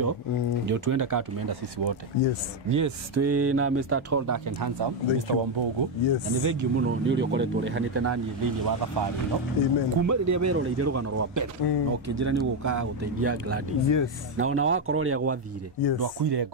Ndio tuende kama tumeenda sisi wote. Yes, twina Mr. Tall Dark and Handsome, Mr. Wambogo. Na ni thengi muno ni uri ukoretwo rehanite nani thiini wa thabari no. Kuma riria weroreire rugano rwa mbere no kinjira ni guka guteithia Gladys. Na ona wakorwo ria gwathire ndwakuire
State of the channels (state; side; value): normal; both; correlation 0.05